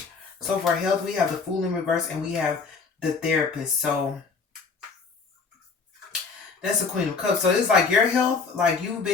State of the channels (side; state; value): right; quieter; 4.9 dB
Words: So for health, we have the Fool in reverse and we have the Therapist. So That's the Queen of Cups. So it's like your health, like you've